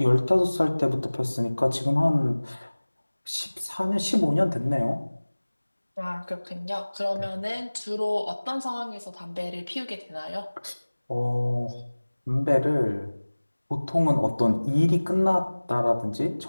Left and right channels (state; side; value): inverted; both; correlation -1.00